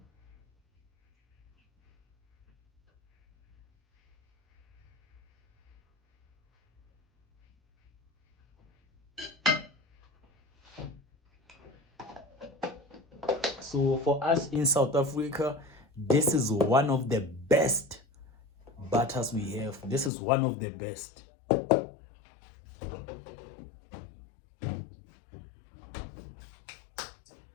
So for us in South Africa, this is one of the best butters we have. This is one of the best.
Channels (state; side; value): drops out; right; at 20.1 s